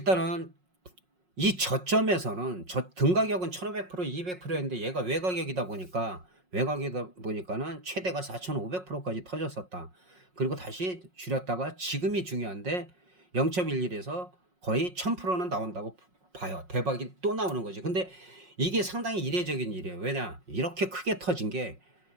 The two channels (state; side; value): late; left; 5.5 ms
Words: 이 저점에서는 등가격은 1500%, 200%였는데 얘가 외곽이다 보니까는 최대가 4500%까지 터졌었다. 그리고 다시 줄였다가 지금이 중요한데 0.11에서 거의 1000%는 나온다고 봐요. 대박이 또 나오는 거지. 근데 이게 상당히 이례적인 일이에요. 왜냐? 이렇게 크게 터진 게